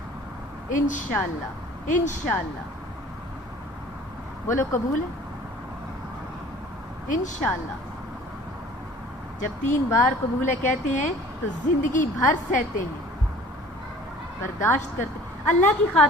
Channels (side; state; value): both; normal; correlation 0.48